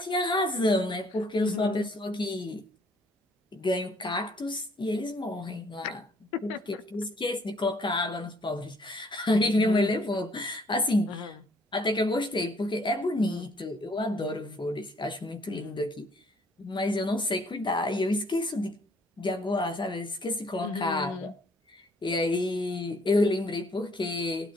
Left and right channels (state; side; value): normal; both; correlation 0.63